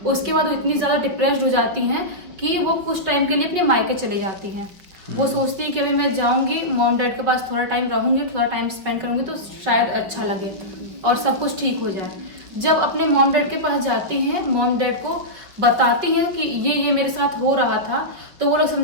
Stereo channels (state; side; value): late; left; 5.4 ms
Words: उसके बाद वो इतनी ज़्यादा डिप्रेस्ड हो जाती हैं कि वो कुछ टाइम के लिए अपने मायके चले जाती हैं। वो सोचती है कि अभी मैं जाऊंगी मॉम डैड के पास, थोड़ा टाइम रहूंगी, थोड़ा टाइम स्पेंड करूंगी तो शायद अच्छा लगे और सब कुछ ठीक हो जाए। जब अपने मॉम डैड के पास जाती हैं, मॉम डैड को बताती हैं कि ये मेरे साथ हो रहा था, तो वो लोग